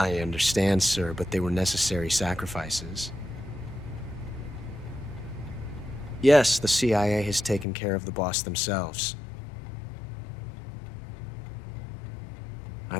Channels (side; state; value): right; drops out; at 7.7 s